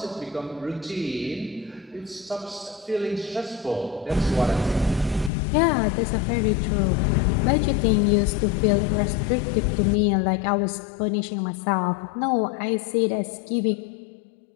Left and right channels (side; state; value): right; drops out; at 5.3 s